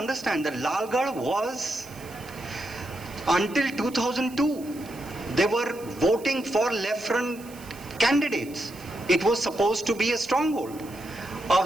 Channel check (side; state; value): right; noise; hiss, 20 dB below the sound